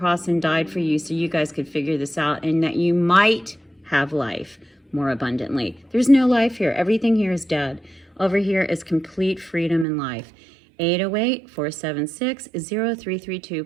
and died for you so you guys could figure this out, and that you might have life more abundantly. There's no life here. Everything here is dead. Over here is complete freedom and life.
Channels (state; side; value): drops out; left; at 9.9 s